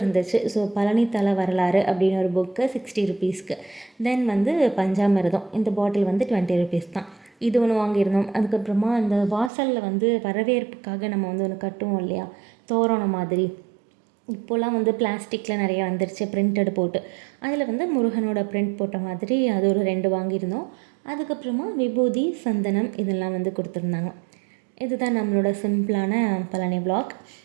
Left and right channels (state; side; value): drops out; left; at 9.5 s